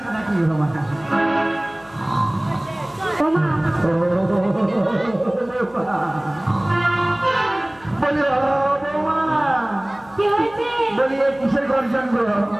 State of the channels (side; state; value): left; noise; hum, 25 dB below the sound